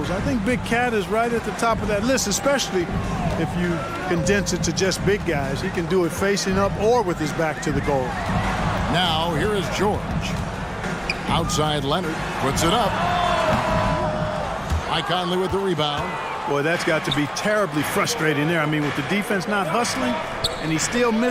I think Big Cat is right at the top of that list, especially if you condense it to just big guys. He can do it facing up or with his back to the goal. Now here is George. Outside Leonard puts it up. Mike Conley with the rebound. Boy, that's got to be terribly frustrating there. I mean, with the defense not hustling and he still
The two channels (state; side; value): identical; both; correlation 1.00